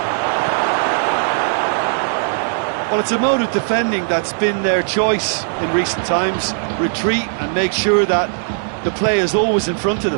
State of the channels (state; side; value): silent; left; 67 dB below the other